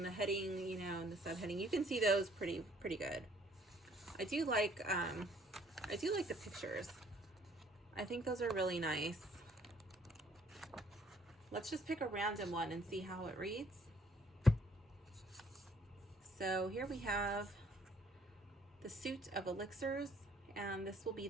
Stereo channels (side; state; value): both; normal; correlation 0.62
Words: the heading, you know, in the subheading, you can see those pretty good. I do like the pictures. I think those are really nice. Let's just pick a random one and see how it reads. So here we have the suit of elixirs, and this will be